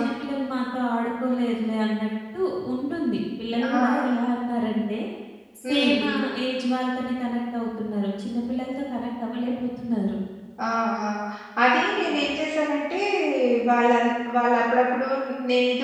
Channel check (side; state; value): both; identical; correlation 1.00